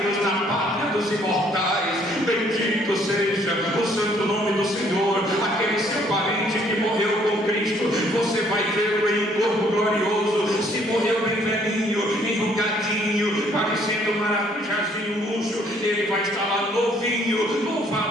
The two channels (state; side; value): normal; both; correlation 0.63